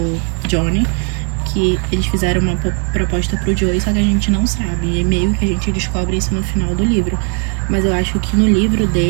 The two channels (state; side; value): quieter; left; 36.9 dB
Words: Johnny, que eles fizeram uma proposta pro Joey, só que a gente não sabe, e meio que a gente descobre isso no final do livro. Mas eu acho que no livro